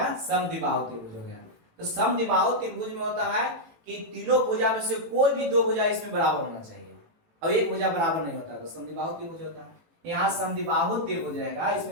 समद्विबाहु त्रिभुज हो गया। तो समद्विबाहु त्रिभुज में होता है कि तीनों भुजा में से कोई भी 2 भुजा इसमें बराबर होना चाहिए, और एक भुजा बराबर नहीं होता, तो समद्विबाहु त्रिभुज होता है। यहाँ समद्विबाहु त्रिभुज रहेगा,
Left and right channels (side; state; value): left; late; 18 ms